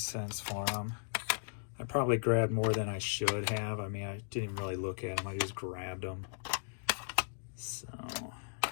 for them. I probably grabbed more than I should have. I mean, I didn't really look at them. I just grabbed them. So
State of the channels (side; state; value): right; silent; digital silence